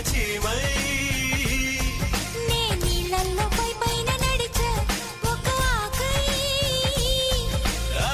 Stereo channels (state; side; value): identical; both; correlation 1.00